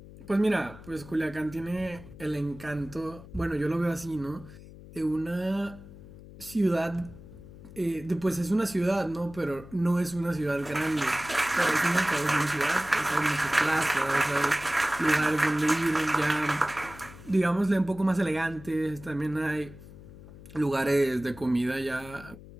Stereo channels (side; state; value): left; noise; hum, 17 dB below the sound